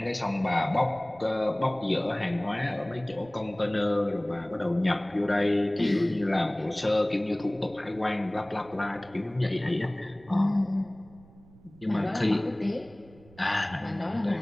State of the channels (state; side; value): noise; right; rumble, 24 dB below the sound